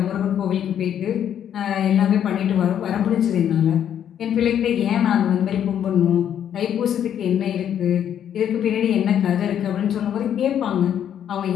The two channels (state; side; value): quieter; right; 9.6 dB